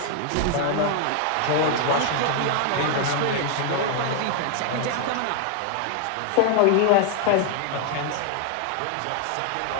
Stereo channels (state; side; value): different; both; correlation 0.00